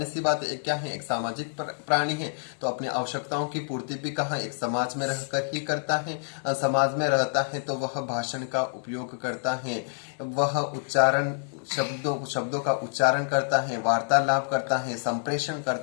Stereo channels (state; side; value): silent; right; 60 dB below the other